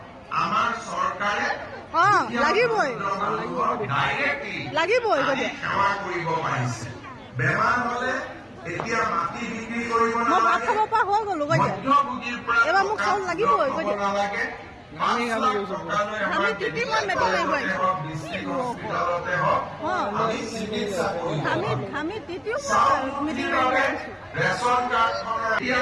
আমাৰ চৰকাৰে লাগিবই লাগিবই। কৈ দিয়া সেৱা কৰিব পাৰিছে। বেমাৰ হলে এতিয়া মাটি বিক্ৰী কৰিব মই ভাত খাব পৰা হৈ গলো। কৈ দিয়া মধ্যভোগীৰ পৰা এবাৰ মোক চাউল লাগিবই। কৈ দিয়া নালাগে। আমি তিতি মই মেট্ৰিক মাৰিব আমি তিতিও মিটিং মাৰিব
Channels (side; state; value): both; identical; correlation 1.00